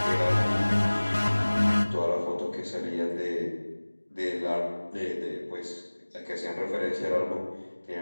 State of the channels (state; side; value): inverted; both; correlation -1.00